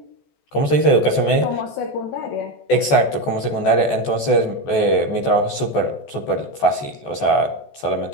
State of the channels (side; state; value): right; late; 14 ms